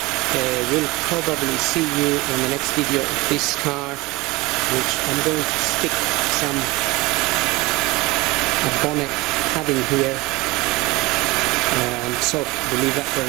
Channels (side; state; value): left; quieter; 22.2 dB